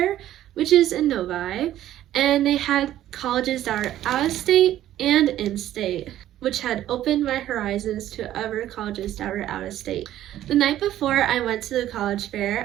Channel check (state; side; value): quieter; left; 12.8 dB